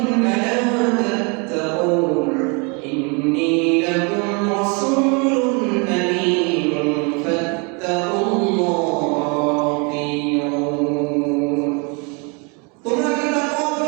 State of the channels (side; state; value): left; quieter; 32.7 dB